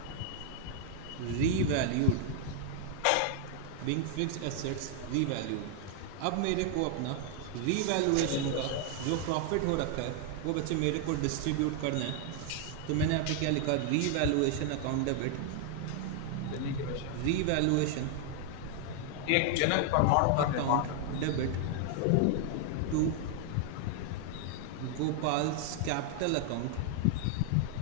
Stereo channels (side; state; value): both; different; correlation 0.00